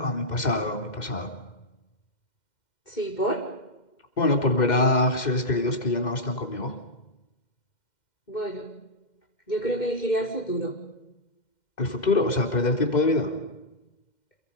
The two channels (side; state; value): right; late; 2.1 ms